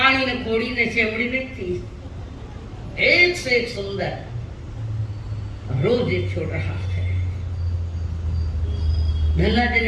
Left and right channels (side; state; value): both; identical; correlation 1.00